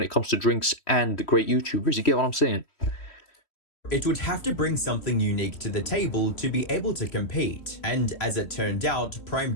it comes to drinks and great YouTubers. You get what I'm saying? it would have to bring something unique to the table to be able to compete. And as it turned out, Prime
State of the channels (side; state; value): right; late; 3.1 ms